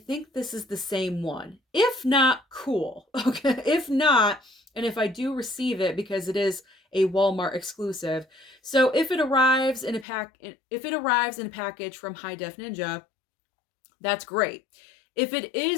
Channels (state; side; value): drops out; right; at 10.1 s